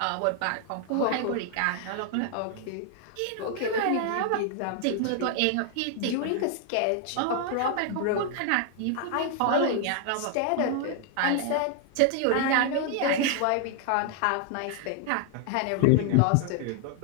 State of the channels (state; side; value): different; both; correlation 0.00